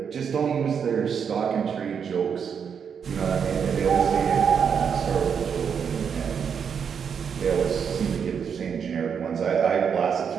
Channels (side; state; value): left; quieter; 7.1 dB